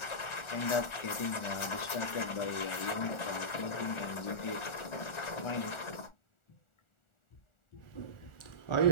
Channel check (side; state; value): right; late; 1.4 ms